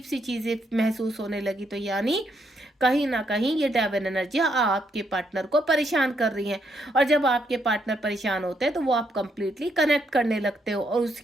सी चीजें महसूस होने लगी। तो यानी कहीं ना कहीं ये डेविल एनर्जियां आपके पार्टनर को परेशान कर रही हैं। और जब आपके पार्टनर परेशान होते हैं तो वो आप कंप्लीटली कनेक्ट करने लगते हो, और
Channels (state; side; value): normal; both; correlation 0.76